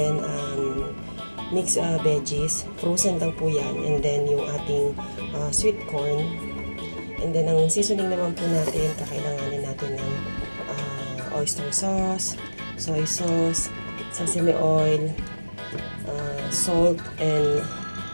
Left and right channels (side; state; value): both; inverted; correlation -1.00